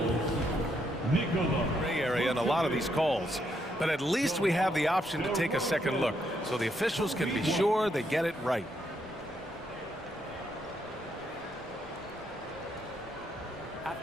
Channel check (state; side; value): normal; both; correlation 0.76